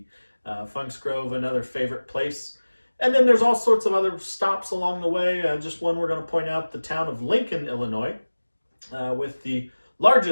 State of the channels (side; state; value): both; inverted; correlation -1.00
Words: Funk's Grove, another favorite place. And then there's all sorts of other stops along the way. Just one we're going to point out, the town of Lincoln, Illinois, with the